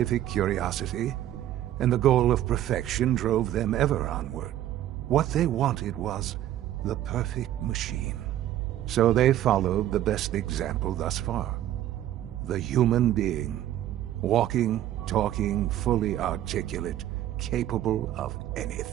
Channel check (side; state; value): left; quieter; 12.5 dB